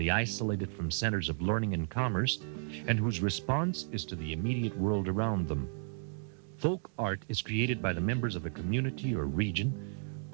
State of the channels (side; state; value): left; silent; digital silence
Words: isolated from centers of learning and commerce, and whose response is to the immediate world around them. Folk art is created by the members of a community or region,